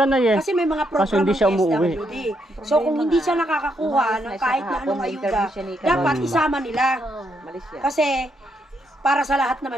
na eh. kasi may mga Kaso program hindi siya ng umuwi. DSWD. So kung hindi siya nakakakuha Umalis ng na siya kahit na kahapon, anong ayuda, na-interview siya ni dapat Kagawad. isama nila. Oh. Malis siya. Kasi para sa lahat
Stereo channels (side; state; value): both; normal; correlation 0.77